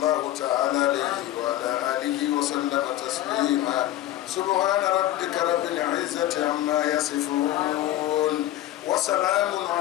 تعالى عليه وعلى آله وسلم تسليما سبحان ربك رب العزة عما يصفون وسلام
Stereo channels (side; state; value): right; quieter; 14.0 dB